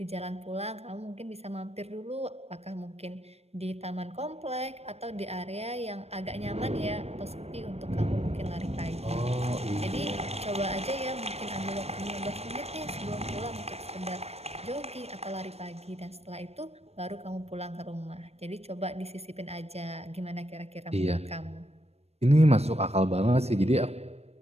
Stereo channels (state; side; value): late; left; 0.30 ms